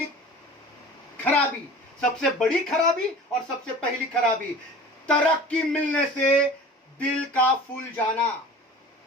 खराबी, सबसे बड़ी खराबी और सबसे पहली खराबी, तरक्की मिलने से दिल का फूल जाना।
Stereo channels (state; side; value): normal; both; correlation 0.41